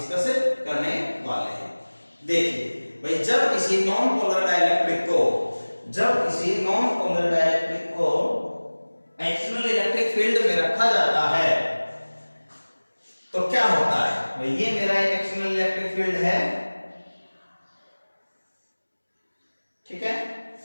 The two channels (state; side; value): inverted; both; correlation -1.00